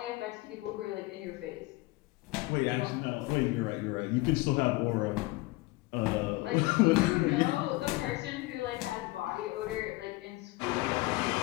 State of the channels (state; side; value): quieter; right; 21.1 dB